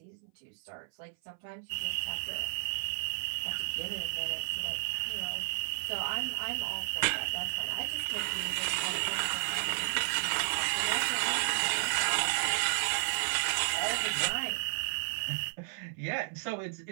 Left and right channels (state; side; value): silent; left; 56 dB below the other